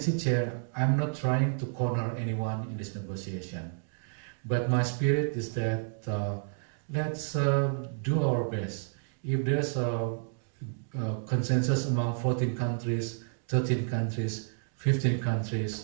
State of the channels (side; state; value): left; silent; digital silence